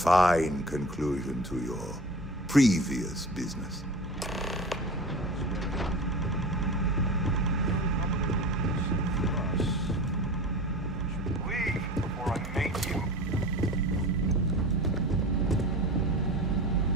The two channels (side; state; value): both; normal; correlation 0.35